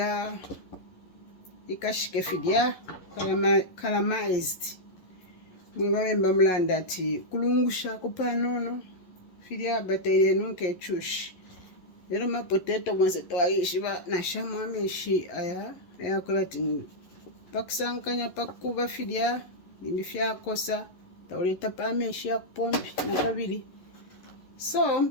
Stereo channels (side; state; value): right; late; 11 ms